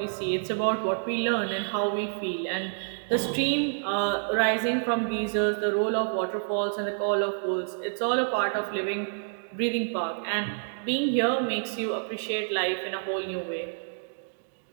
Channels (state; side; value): silent; left; digital silence